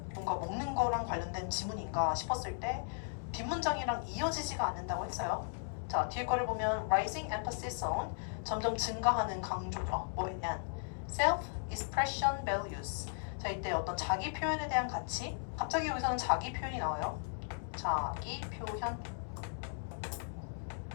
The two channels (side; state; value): right; silent; digital silence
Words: 뭔가 먹는 거랑 관련된 지문인가 싶었을 때 뒷문장이랑 이어지지가 않는다고 했어요. 자, 뒤에 거를 보면 rising emphasis on 점점 증가하는 강조죠. and self-expression values. 자, 이때 어떤 자기 표현에 대한 가치. 갑자기 여기서는 자기 표현이 나와요. 자기 표현.